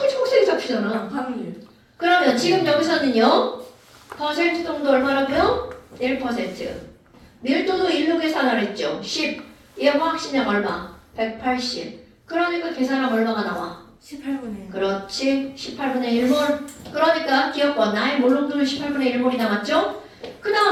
초록색이 잡히잖아. 확률. 그러면 지금 여기서는요. 퍼센트 정도 얼마라고요? 1%. 밀도도 1로 계산을 했죠. 10. 얘 화학식량 얼마? 180. 그러니까 계산하면 얼마가 나와? 18분의 그렇지. 18분의 1몰. 그러니까 기억번 나의 몰롱도는 18분의 1몰이 남았죠. 그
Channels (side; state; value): both; identical; correlation 1.00